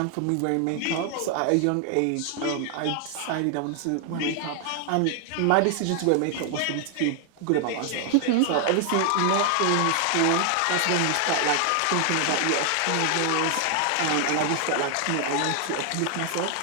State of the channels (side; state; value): both; different; correlation 0.00